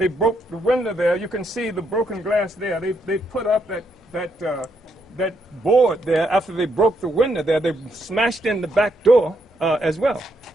broke the window there. You can see the broken glass there. They put up that board there after they broke the window there. They smashed in the back door as well.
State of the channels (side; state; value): both; normal; correlation 0.76